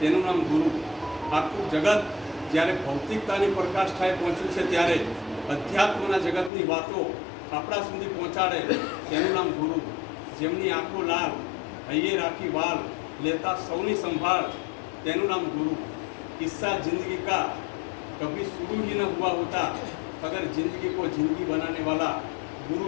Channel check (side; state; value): right; drops out; at 6.5 s